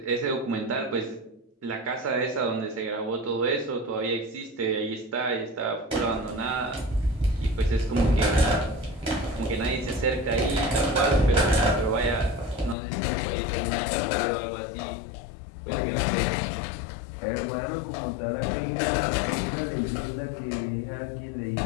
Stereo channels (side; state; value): right; drops out; at 12.8 s